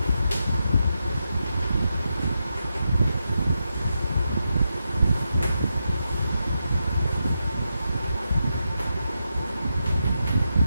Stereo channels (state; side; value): inverted; both; correlation -0.86